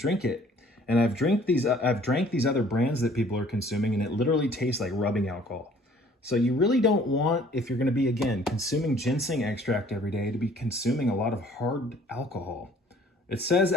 it. And I've drank these other brands that people are consuming and it literally tastes like rubbing alcohol. So you really don't want, if you're going to be, again, consuming ginseng extract every day, to be consuming a lot of hard alcohol. It says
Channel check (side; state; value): both; normal; correlation 0.55